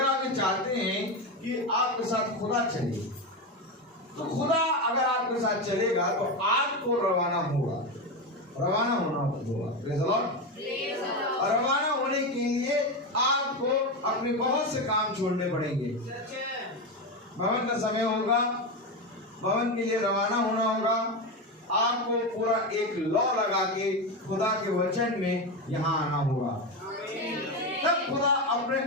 आप ये चाहते हैं कि आपके साथ खुदा चले, तो खुदा अगर आपके साथ चलेगा तो आपको रवाना होगा, रवाना होना होगा। और रवाना होने के लिए आपको अपने बहुत से काम छोड़ने पड़ेंगे। भवन का समय होगा, भवन के लिए रवाना होना होगा। आपको पूरा एक लॉ लगा के खुदा के वचन में यहाँ आना होगा, तब खुदा अपने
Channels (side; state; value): both; normal; correlation 0.15